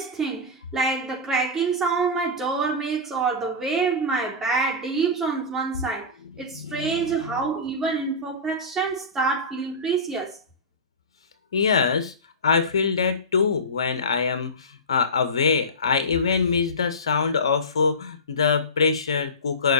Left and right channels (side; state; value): both; normal; correlation -0.20